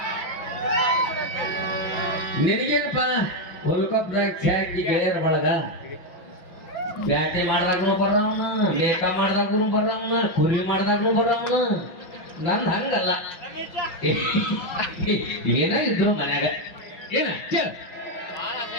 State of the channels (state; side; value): late; right; 5.8 ms